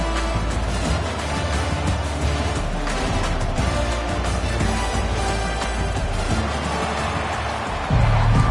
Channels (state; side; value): identical; both; correlation 1.00